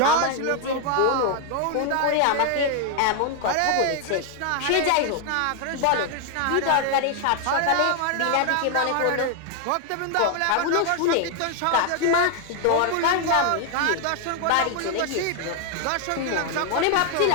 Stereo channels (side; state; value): both; different; correlation 0.00